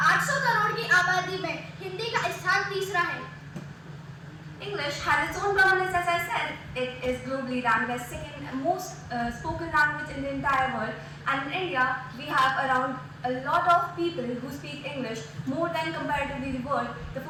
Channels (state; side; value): identical; both; correlation 1.00